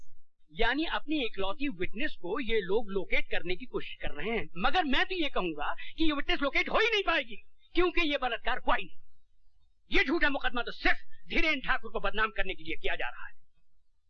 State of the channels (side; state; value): both; identical; correlation 1.00